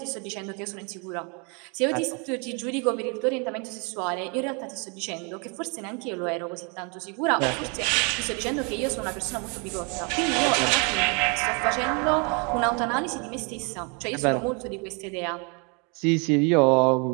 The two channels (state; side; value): quieter; left; 33.9 dB